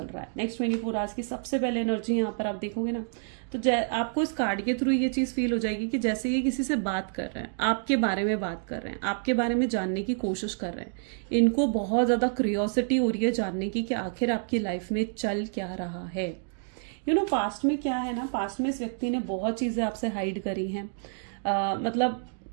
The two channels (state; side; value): silent; left; digital silence